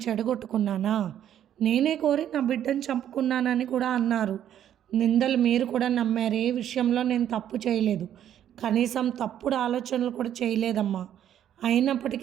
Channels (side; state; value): left; quieter; 10.5 dB